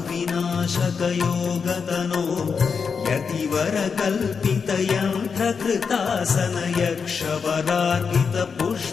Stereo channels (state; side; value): quieter; right; 5.8 dB